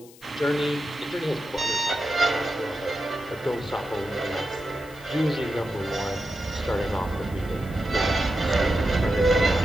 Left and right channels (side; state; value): left; noise; hiss, 23 dB below the sound